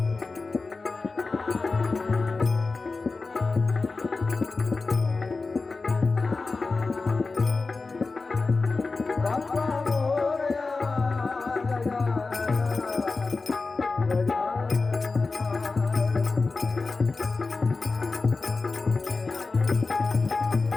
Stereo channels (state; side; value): quieter; right; 3.9 dB